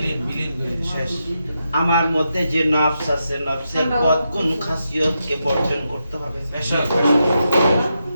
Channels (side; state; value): both; inverted; correlation -0.85